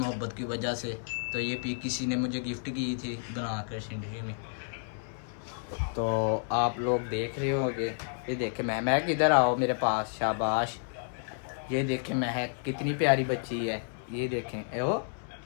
की वजह से। तो ये पिक किसी ने मुझे गिफ्ट की थी बनाकर जिंदगी में, तो आप लोग देख रहे होंगे। ये देखे महक इधर आओ मेरे पास, शाबाश। ये देखें महक कितनी प्यारी बच्ची है। ये देखें ओ,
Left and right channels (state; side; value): silent; right; 57 dB below the other